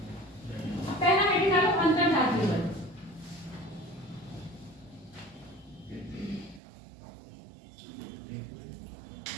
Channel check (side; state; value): left; drops out; at 6.6 s